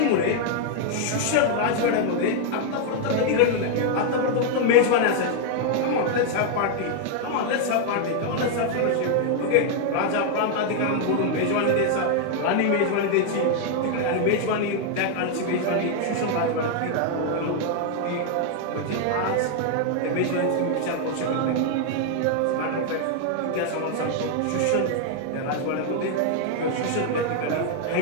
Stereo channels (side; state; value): both; different; correlation 0.00